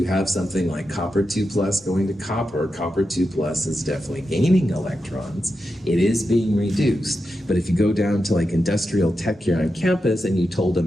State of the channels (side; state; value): both; normal; correlation 0.88